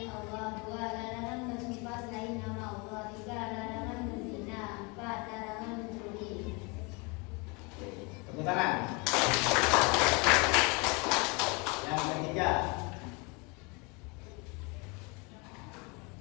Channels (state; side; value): quieter; right; 29.5 dB